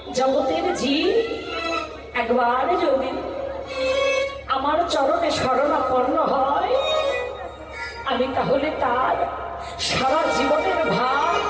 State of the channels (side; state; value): both; identical; correlation 1.00